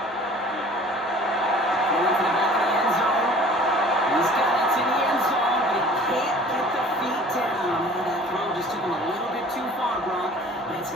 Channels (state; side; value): normal; both; correlation 0.48